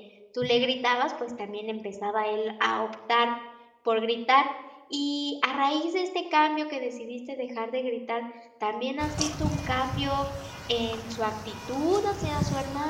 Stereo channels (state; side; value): identical; both; correlation 1.00